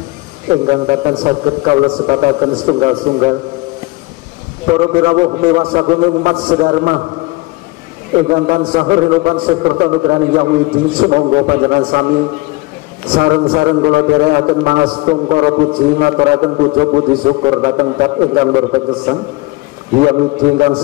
ingkang datang saged kawula sebataken setunggal-tunggal para pirawuh miwasagung umat sedharma ingkang tansah rinupan saperta nugraning Hyang Widi sumangga panjenengan sami sareng-sareng kula dherekaken mangastung para puji ngaturaken puja puji syukur dhateng dat ingkang berpegesang Hyang Widi ingkang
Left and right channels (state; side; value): quieter; right; 22.2 dB